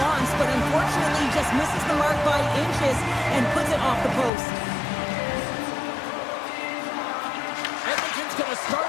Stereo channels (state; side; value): drops out; right; at 4.3 s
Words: wants, but unfortunately just misses the mark by inches and puts it off the post. Edmonton's going to